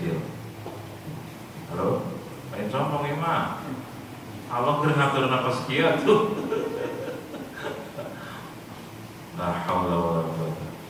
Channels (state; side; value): identical; both; correlation 1.00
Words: Halo, lain sombong ya mah. Allah ngatur nafas sekian tuh. La haula wala quwwata.